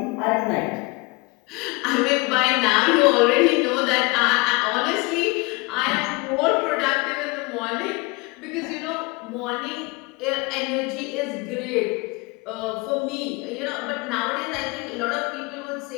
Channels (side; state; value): right; quieter; 26.2 dB